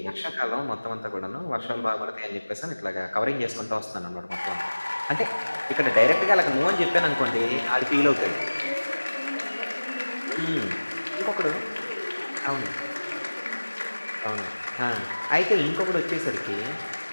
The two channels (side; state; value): both; inverted; correlation -1.00